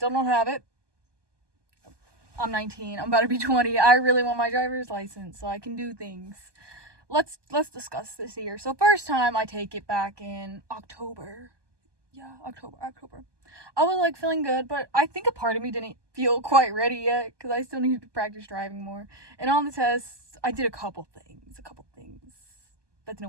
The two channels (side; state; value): left; late; 1.2 ms